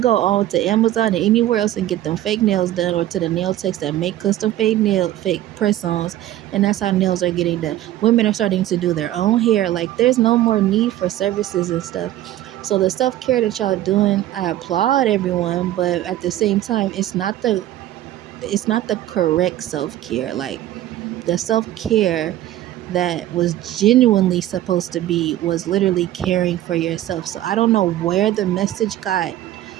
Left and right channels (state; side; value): quieter; left; 13.7 dB